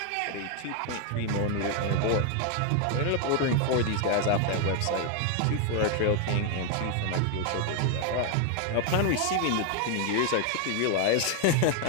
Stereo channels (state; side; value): different; both; correlation 0.00